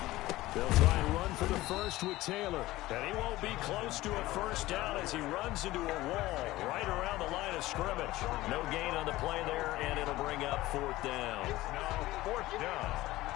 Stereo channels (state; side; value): quieter; right; 17.5 dB